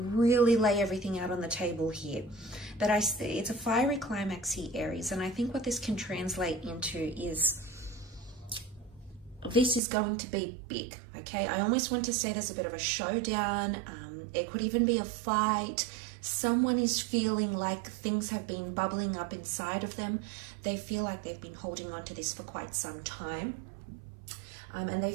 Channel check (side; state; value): left; drops out; at 9.8 s